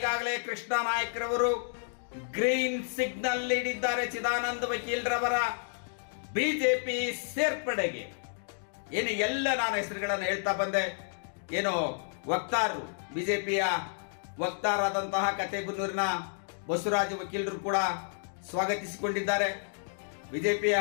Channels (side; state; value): right; silent; digital silence